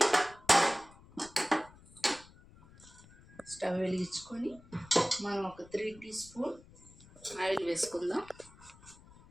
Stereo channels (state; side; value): noise; left; rumble, 23 dB below the sound